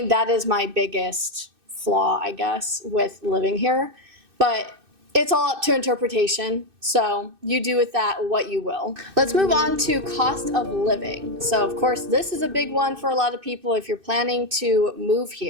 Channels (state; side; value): late; left; 2.6 ms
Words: that is my biggest flaw, I guess, with living here. But it's all up to interpretation, so you do with that what you will. Let's move on to cost of living. So of course, this is a big one for a lot of people if you're planning to move